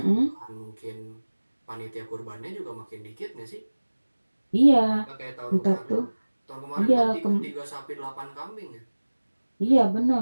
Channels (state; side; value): inverted; both; correlation -1.00